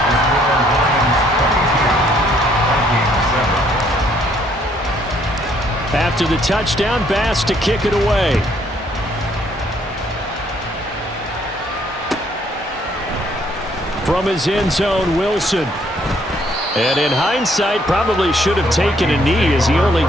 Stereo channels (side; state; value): both; normal; correlation 0.66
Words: After the touchdown, Bass to kick it away. From his end zone, Wilson. And in hindsight, probably should have taken a knee as he only